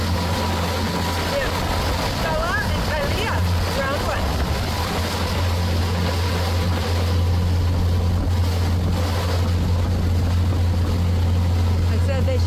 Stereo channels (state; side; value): identical; both; correlation 1.00